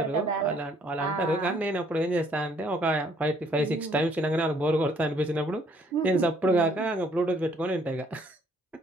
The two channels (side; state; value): both; normal; correlation 0.64